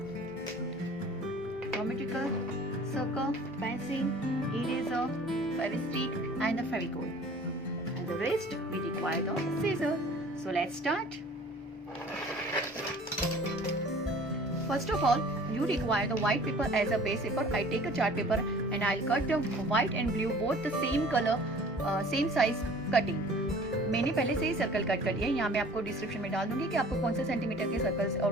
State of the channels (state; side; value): normal; both; correlation 0.48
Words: geometrical circle, pencil, eraser, fevistick and the fevicol. And the rest we require the scissors. So let's start. First of all, you require the white paper as a base paper. I take a chart paper and I'll cut the white and blue both the same color, same size cutting. मैंने पहले से ही circle cut कर लिया है. यहाँ मैं आपको description में डाल दूंगी कि आपको कौन से सेंटीमीटर के सर्कल्स और